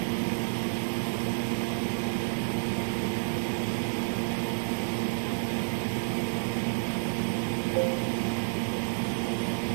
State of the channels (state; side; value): silent; left; 58 dB below the other